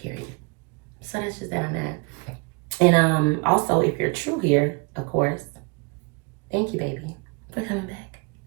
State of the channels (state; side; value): quieter; left; 28.9 dB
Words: So that's just that I'm at. And also, if you're true here, of course, thank you, baby, for coming back,